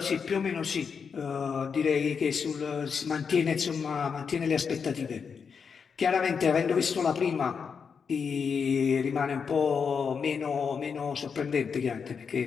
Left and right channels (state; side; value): quieter; right; 6.1 dB